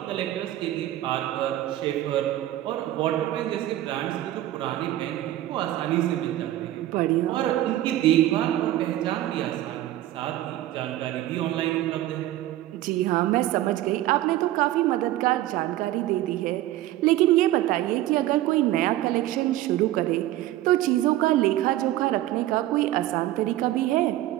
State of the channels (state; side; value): quieter; left; 14.5 dB